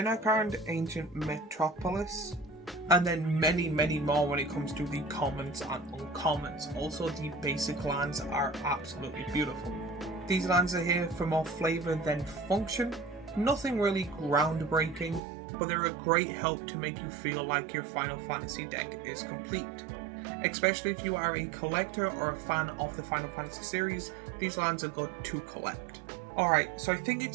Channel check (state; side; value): drops out; left; at 15.2 s